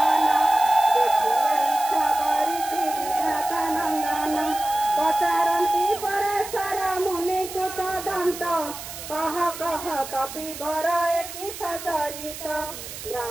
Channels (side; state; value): right; noise; hiss, 11 dB below the sound